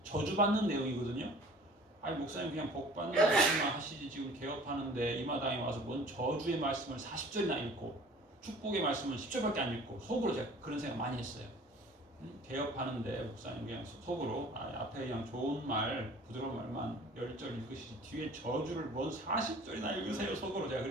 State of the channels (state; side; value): normal; both; correlation 0.47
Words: 저주받는 내용이거든요. 아니 목사님 그냥 복 받는 말씀만 하시지 지금 개업하는데 이 마당에 와서 뭔 저주의 말씀을 40절이나 읽고 축복의 말씀은 10절밖에 안 읽고 속으로 제가 그런 생각 많이 했어요. 개업하는데 목사님 그냥 속으로 앞에 그냥 좋은 말 부드러운 말만 10절 읽으시지 뒤에 저주를 뭔 40절이나 읽으세요 속으로 제가